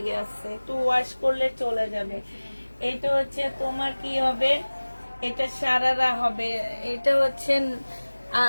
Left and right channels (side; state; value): both; inverted; correlation -1.00